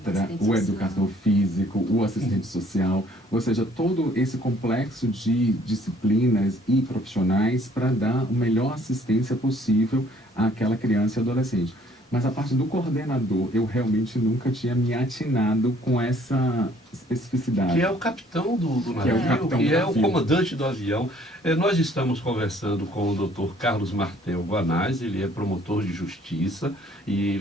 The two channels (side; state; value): both; normal; correlation 0.60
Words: o educador físico, o assistente social, ou seja, todo esse complexo de disciplinas e profissionais para dar a melhor assistência possível àquela criança e adolescente. Mas a parte do coordenador, eu realmente nunca tinha me atinado com essa especificidade. Que é o capitão do navio, que é o comandante do avião. Nós estamos conversando com o Dr. Carlos Martel Guanais, ele é promotor de justiça e